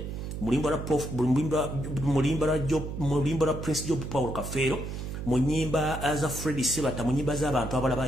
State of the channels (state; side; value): noise; right; hum, 7 dB below the sound